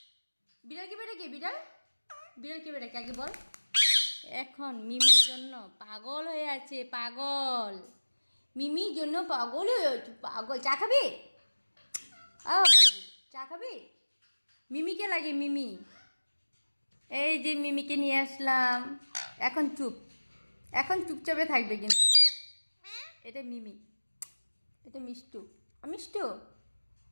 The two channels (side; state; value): both; inverted; correlation -1.00